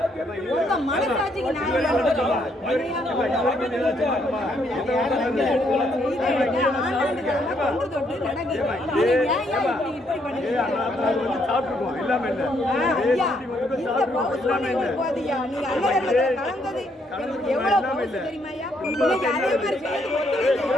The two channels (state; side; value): normal; both; correlation 0.72